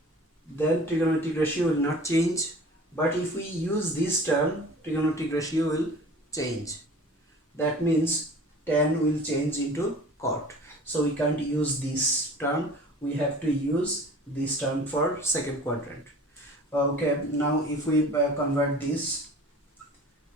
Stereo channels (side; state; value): both; normal; correlation 0.44